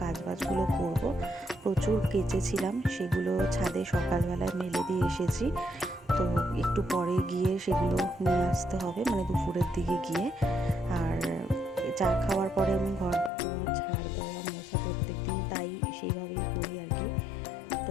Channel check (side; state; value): right; drops out; at 13.3 s